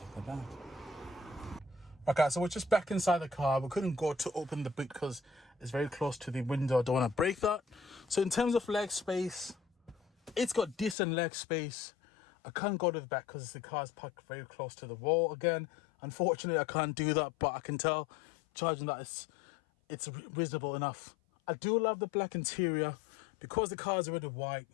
the back. Okay, so we're just back inside the car. We couldn't go to open the boot because it's very close to the window. I don't want to break that. So in terms of leg space, it's got decent leg space. I can't go to the back because the car's parked very close to the wall. Again, unfortunately, I can't do that, but I can tell charging that it's reasonable enough. I do love the black interior because the car is already white.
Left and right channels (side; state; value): right; drops out; at 11.0 s